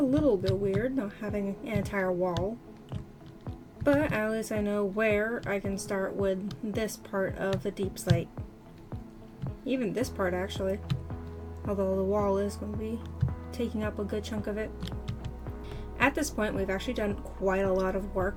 little bit weird not having an entire wall. But at least I know where I can start with this part of the deep slate. Even this part, actually. Although the wall is going to be taking up a good chunk of it. At this point, we've actually done quite a lot of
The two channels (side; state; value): both; identical; correlation 1.00